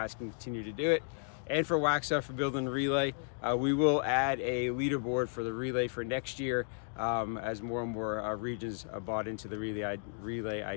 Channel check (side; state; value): right; silent; digital silence